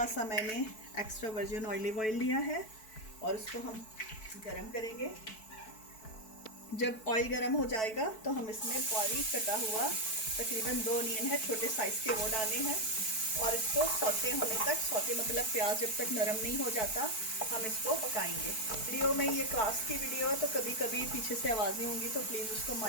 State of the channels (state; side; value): late; right; 4.6 ms